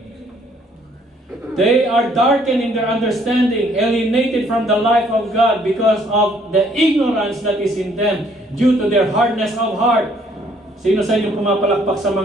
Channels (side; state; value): both; normal; correlation 0.64